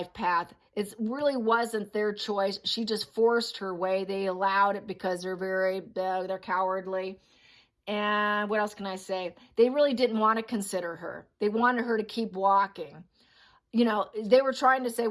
path. It really wasn't their choice. She just forced her way. They allowed it because they're cowardly. And what else can I say? They really didn't want to consider her. They wanted her to keep walking. They were trying to say,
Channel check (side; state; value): both; identical; correlation 1.00